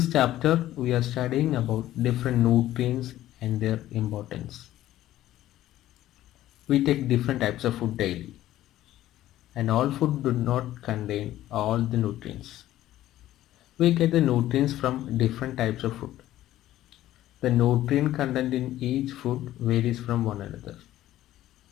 chapter, we are studying about different nutrients and their importance. We take different types of food daily, and all food do not contain all the nutrients. We get the nutrients from different types of food. The nutrient content in each food varies from one another.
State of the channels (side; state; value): right; quieter; 14.0 dB